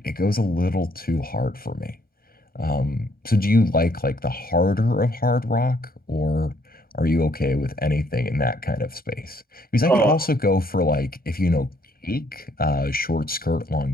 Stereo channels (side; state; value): both; normal; correlation 0.67